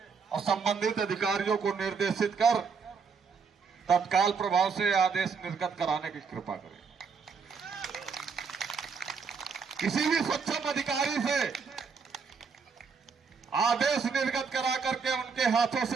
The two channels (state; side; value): quieter; left; 5.5 dB